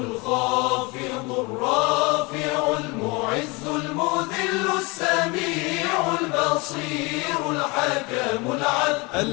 الرافع المعز المذل السميع البصير الحكم العدل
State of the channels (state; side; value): quieter; right; 26.5 dB